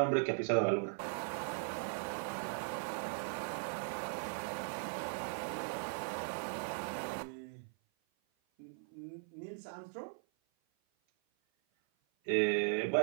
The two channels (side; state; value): left; silent; 52 dB below the other